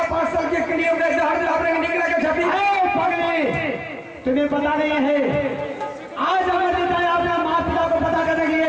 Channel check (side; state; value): both; identical; correlation 1.00